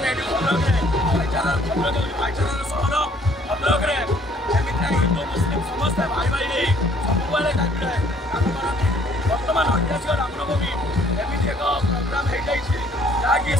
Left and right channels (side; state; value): both; normal; correlation 0.60